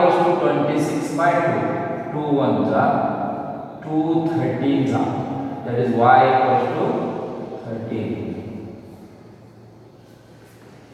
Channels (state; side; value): identical; both; correlation 1.00